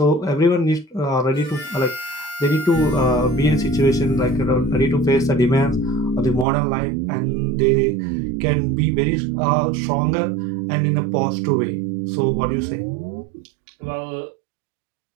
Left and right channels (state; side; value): drops out; left; at 6.5 s